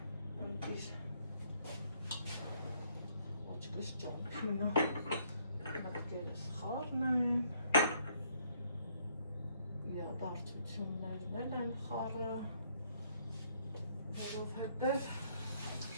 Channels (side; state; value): both; inverted; correlation -0.68